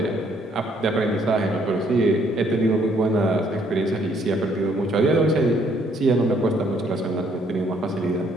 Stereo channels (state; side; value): normal; both; correlation 0.66